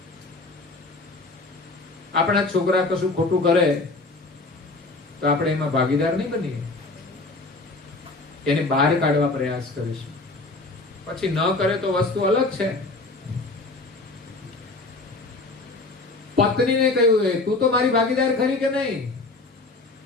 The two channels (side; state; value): right; quieter; 3.3 dB